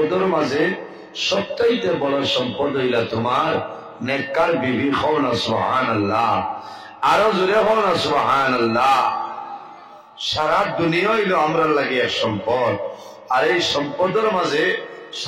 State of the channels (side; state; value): both; identical; correlation 1.00